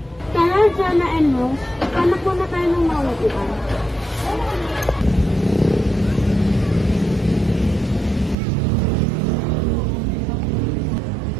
Kaya Jana and Rose, hanap muna tayo ng mauupuan.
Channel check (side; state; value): left; drops out; at 8.3 s